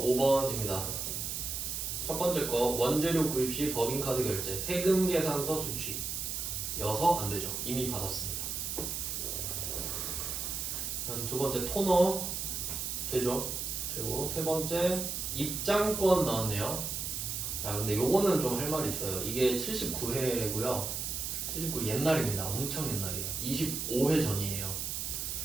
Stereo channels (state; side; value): noise; right; hiss, 3 dB below the sound